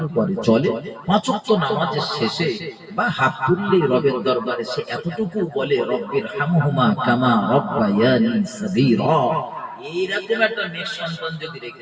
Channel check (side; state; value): both; identical; correlation 1.00